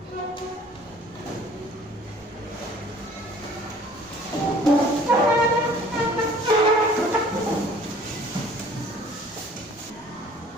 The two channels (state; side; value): normal; both; correlation 0.52